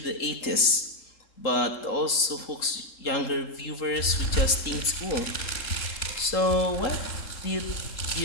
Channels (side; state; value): right; late; 3.7 ms